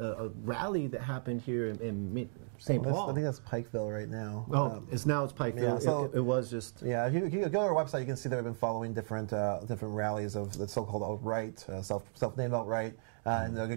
rally that happened here in St. Paul. I think that's Pikeville right now. Oh, it's Pikeville. Yeah, so it was just... Yeah, if you go to our website, you can see that we've been following different rallies of the so-called alt-right, self-named alt-right, and there are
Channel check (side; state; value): left; silent; digital silence